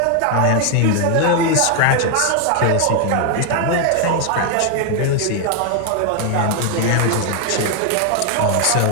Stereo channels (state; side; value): different; both; correlation 0.00